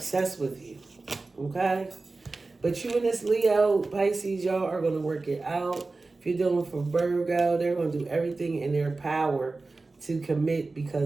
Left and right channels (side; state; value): left; quieter; 3.5 dB